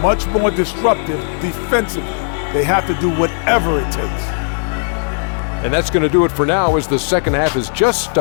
much more disruptive defensively. They have to do whatever it takes. And that's going to do it for now as the second half is just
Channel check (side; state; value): right; silent; 61 dB below the other